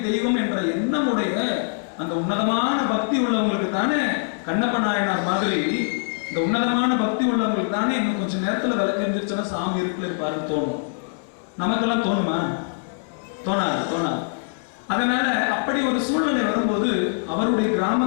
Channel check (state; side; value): silent; right; digital silence